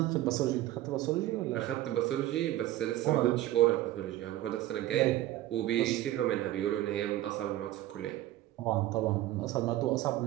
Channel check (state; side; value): quieter; left; 14.7 dB